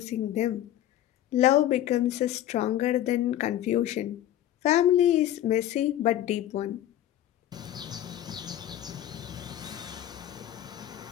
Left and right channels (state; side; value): quieter; right; 12.4 dB